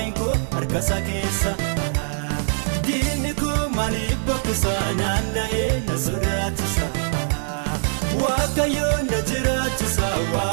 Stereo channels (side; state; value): left; silent; 64 dB below the other